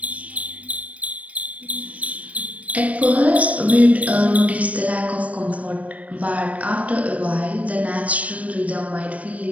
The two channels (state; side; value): late; left; 0.067 ms